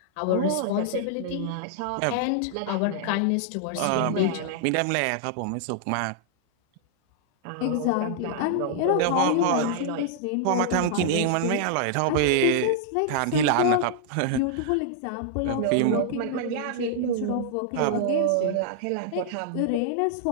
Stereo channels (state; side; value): different; both; correlation -0.01